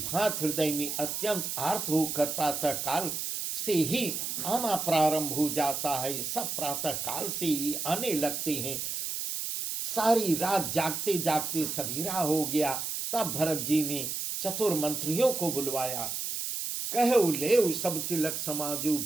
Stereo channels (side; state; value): right; noise; hiss, 3 dB below the sound